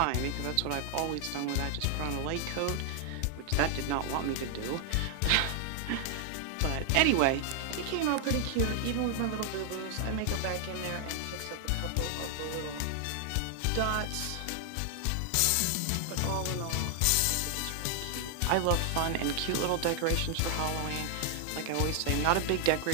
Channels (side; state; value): both; different; correlation 0.00